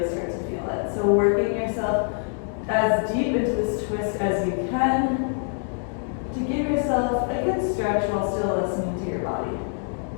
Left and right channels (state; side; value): silent; right; 58 dB below the other